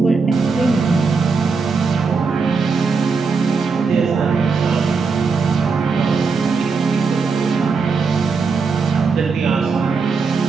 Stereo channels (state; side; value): quieter; left; 4.8 dB